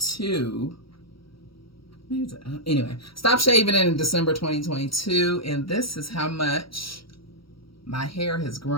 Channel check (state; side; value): late; right; 0.75 ms